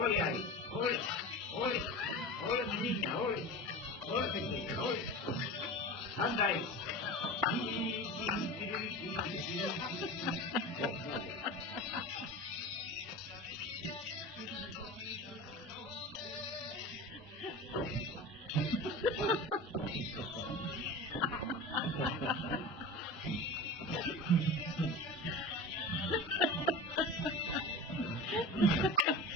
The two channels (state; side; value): normal; both; correlation 0.31